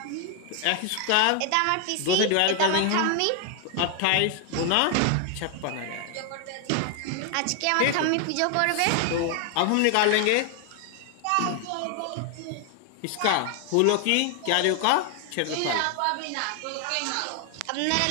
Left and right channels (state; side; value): different; both; correlation 0.00